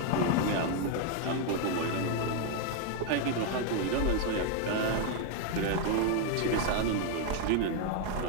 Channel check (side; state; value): both; different; correlation 0.01